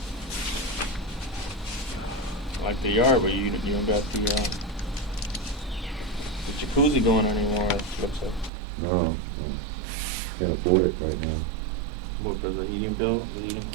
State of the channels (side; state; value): left; drops out; at 8.5 s